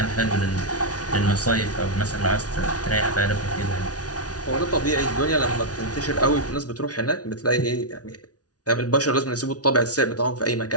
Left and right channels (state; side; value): late; right; 0.68 ms